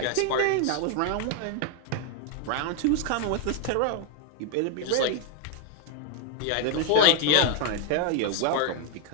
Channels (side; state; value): both; different; correlation 0.01